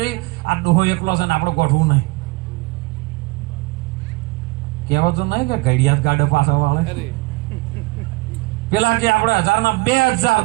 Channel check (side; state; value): left; quieter; 23.3 dB